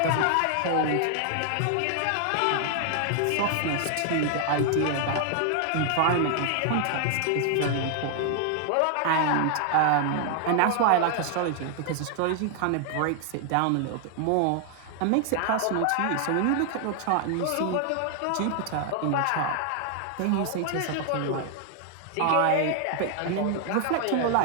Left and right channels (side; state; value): both; different; correlation 0.00